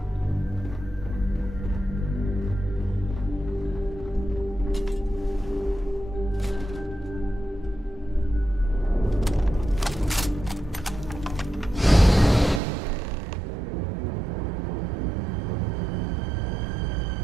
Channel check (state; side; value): drops out; left; at 12.6 s